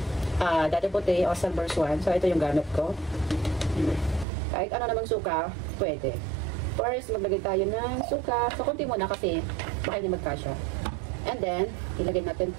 Dati Puti o Silver Swan. So, ito yung gamit ko. Kahit ano namang suka, pwede. First, maglagay tayo ng suka. So, konti muna kasi baka hindi magkasya. And then, ilagay natin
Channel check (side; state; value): left; drops out; at 4.2 s